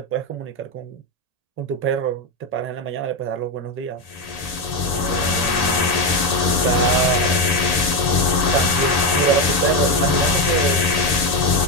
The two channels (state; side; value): late; right; 1.8 ms